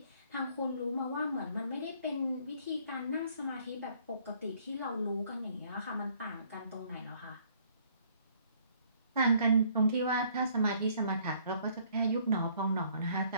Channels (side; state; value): both; inverted; correlation -0.62